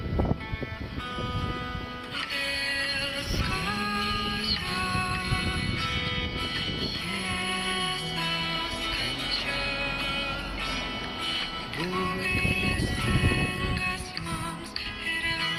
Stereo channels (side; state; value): both; identical; correlation 1.00